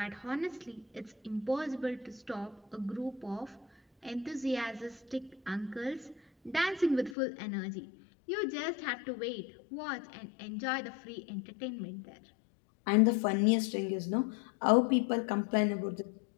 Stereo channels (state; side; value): drops out; right; at 7.2 s